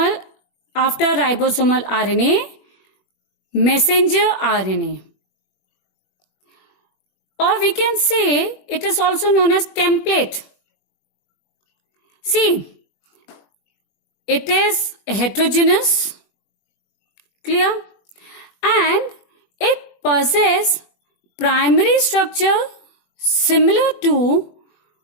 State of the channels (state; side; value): late; right; 21 ms